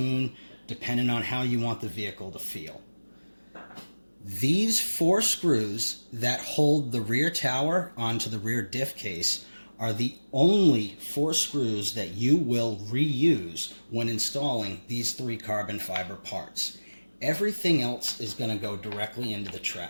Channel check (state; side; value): inverted; both; correlation -1.00